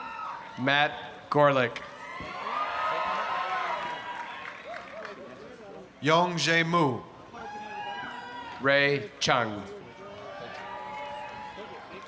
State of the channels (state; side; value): identical; both; correlation 1.00